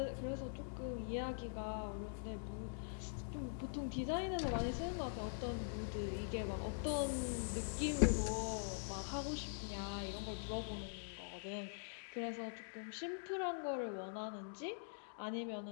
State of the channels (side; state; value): right; silent; digital silence